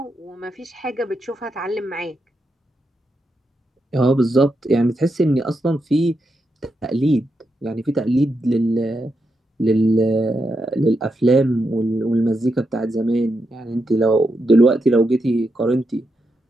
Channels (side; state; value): both; normal; correlation 0.84